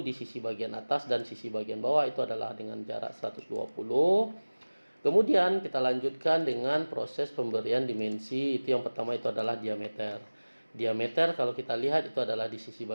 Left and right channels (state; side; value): inverted; both; correlation -1.00